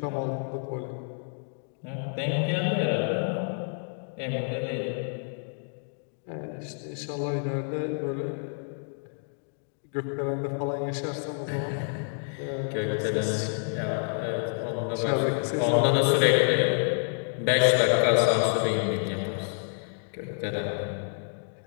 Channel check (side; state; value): right; silent; 59 dB below the other